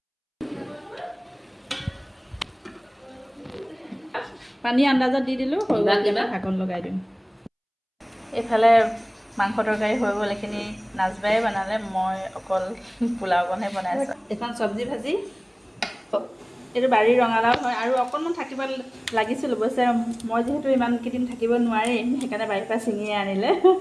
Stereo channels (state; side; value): identical; both; correlation 1.00